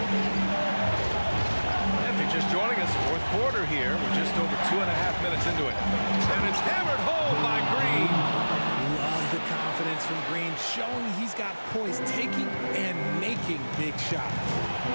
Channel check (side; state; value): both; inverted; correlation -1.00